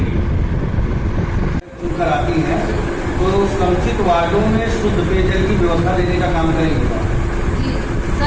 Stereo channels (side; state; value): both; identical; correlation 1.00